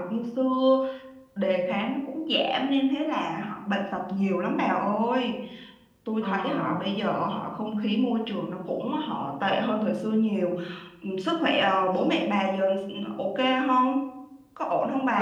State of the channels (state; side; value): identical; both; correlation 1.00